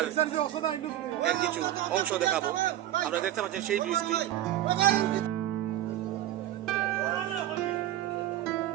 এর কিছু অংশ দেখাবো। আপনারা দেখতে পাচ্ছেন সেই ব্রিজটি।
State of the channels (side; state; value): left; quieter; 13.1 dB